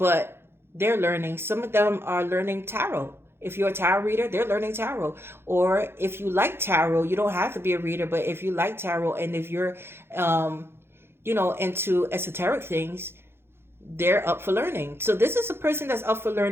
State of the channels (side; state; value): left; late; 0.11 ms